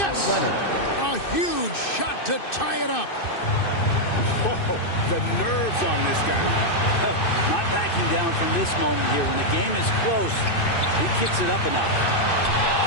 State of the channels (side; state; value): right; late; 2.6 ms